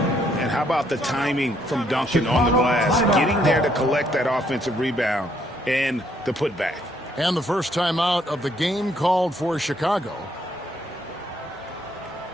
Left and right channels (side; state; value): both; normal; correlation 0.70